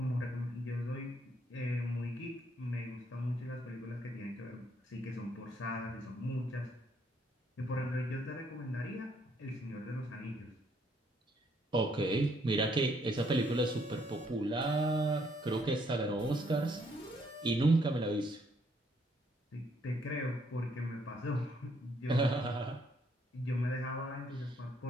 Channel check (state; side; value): normal; both; correlation 0.69